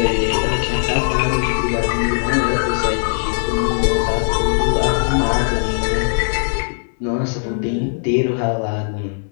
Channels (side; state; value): right; silent; 61 dB below the other